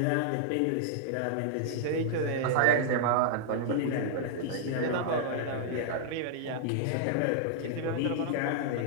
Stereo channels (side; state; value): both; different; correlation -0.01